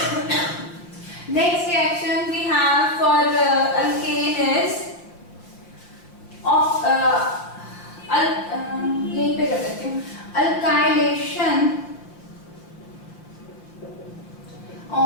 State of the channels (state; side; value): late; right; 5.6 ms